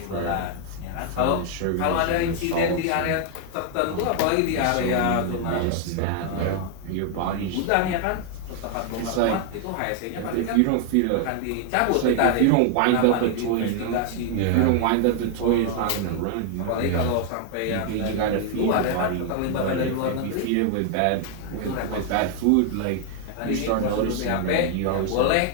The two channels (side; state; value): both; different; correlation 0.00